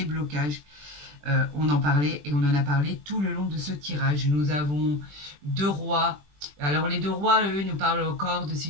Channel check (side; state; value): left; late; 20 ms